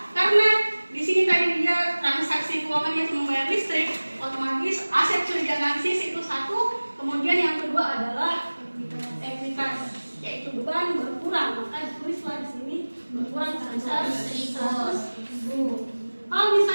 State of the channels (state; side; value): inverted; both; correlation -1.00